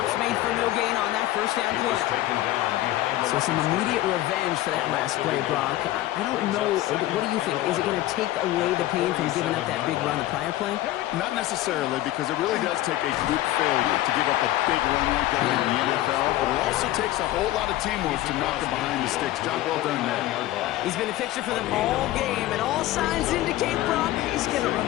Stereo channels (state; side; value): quieter; right; 15.4 dB